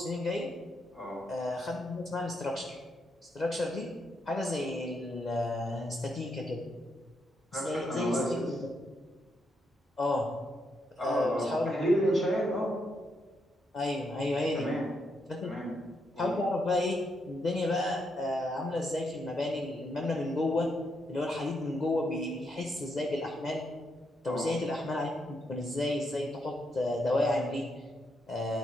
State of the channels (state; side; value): normal; both; correlation 0.79